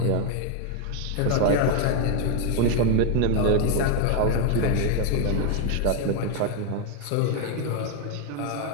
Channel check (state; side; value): different; both; correlation 0.01